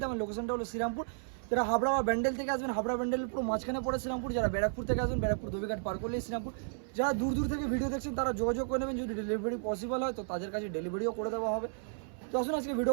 আমার লোকেশনটা হলো শ্রীরামপুর। যারা হাবড়া বা ব্যান্ডেল থেকে আসবেন, হাবড়া ব্যান্ডেলের পুরো মাঝখানে পড়ে শ্রীরামপুর। যারা ব্যারাকপুর থেকে আসবেন, ব্যারাকপুর ধোবিঘাট পার করলেই শ্রীরামপুর। যারা দূর থেকে ভিডিও দেখছেন তারা যোগাযোগ করে নেবেন, যদি ডেলিভারি পসিবল হয় তো তাদের কাছে ডেলিভারিও করে দেওয়া হবে। তো আসুন আজকে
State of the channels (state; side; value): silent; left; 56 dB below the other